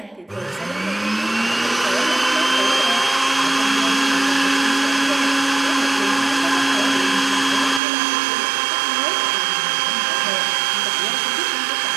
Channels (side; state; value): left; drops out; at 7.8 s